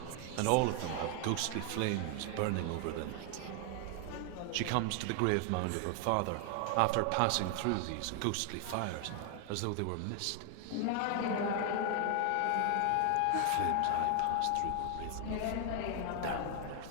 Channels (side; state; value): both; different; correlation 0.00